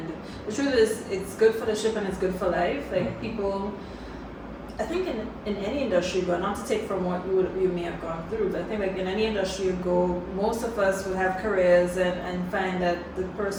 the truth is it's good for the ship and it's good for life. Like people, I think in any industry, but not to take from what you may have gone through, but I think like in any industry you go, most of us will have careers and find that the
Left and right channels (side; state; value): both; identical; correlation 1.00